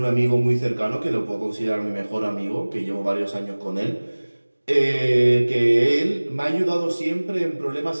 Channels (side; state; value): both; inverted; correlation -1.00